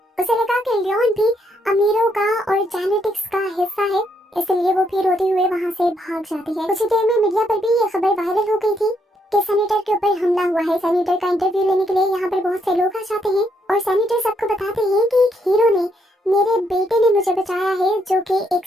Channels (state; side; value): normal; both; correlation 0.75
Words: उसे लगा कि लियोन भी अमीरों का और जेनेटिक्स का हिस्सा है, इसलिए वो भी रोते हुए वहाँ से भाग जाती है। कुछ देर में मीडिया पर भी ये खबर वायरल हो गई थी कि सैनिटर के ऊपर हमला हुआ है। सैनिटर का इंटरव्यू लेने के लिए यहाँ पर बहुत से लोग आ जाते हैं, और सैनिटर सबको बताते हैं कि एक हीरो ने, मेरे बेटे ने मुझे बचाया है, जो कि एक